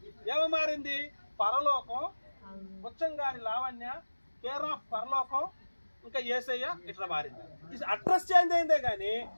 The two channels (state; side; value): inverted; both; correlation -1.00